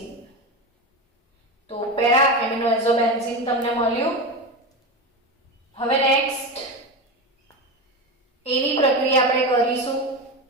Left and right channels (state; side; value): normal; both; correlation 0.20